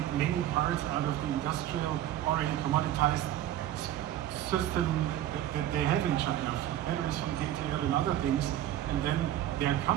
many parts out of the industrial, already commoditized system that they have in China, from batteries, from data and other things, and then they are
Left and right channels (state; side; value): quieter; left; 12.6 dB